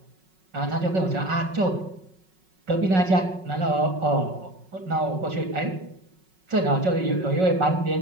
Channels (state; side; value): late; left; 5.4 ms